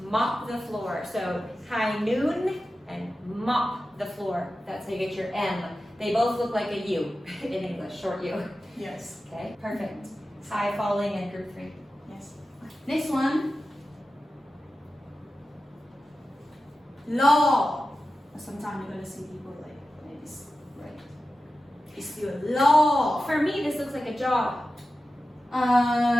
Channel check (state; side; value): normal; both; correlation 0.93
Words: the floor. So high noon and mop the floor. That's how you get your M. They both look like a U in English, short U. Yes. Okay, perfect. High falling and group 3. Yes. Next one. Law. Sometimes you're going to see people like this, right? It's still law. For me, this looks like a jaw.